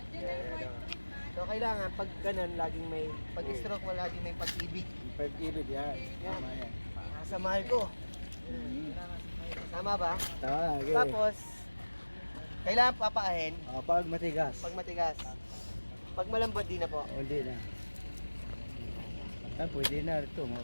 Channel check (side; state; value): both; inverted; correlation -1.00